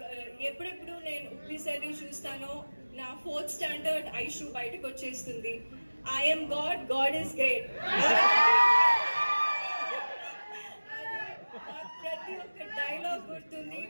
ఎప్పుడెప్పుడు నేను ఉప్పి సార్ చూస్తానో నా 4th స్టాండర్డ్ ఐషు బయటకు వచ్చేస్తుంది. I'm God is great. ప్రతి ఒక్క డైలాగ్ గుర్తుంది,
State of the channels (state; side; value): inverted; both; correlation -1.00